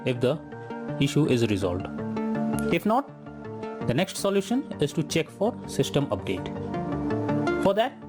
if the issue is resolved. If not, the next solution is to check for system update. For that,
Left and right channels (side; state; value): both; identical; correlation 1.00